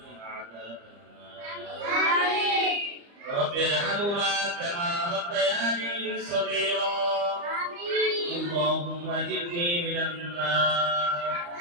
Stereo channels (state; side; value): late; left; 35 ms